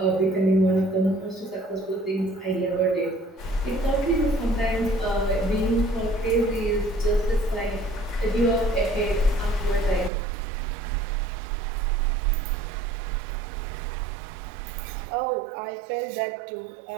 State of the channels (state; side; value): drops out; left; at 10.1 s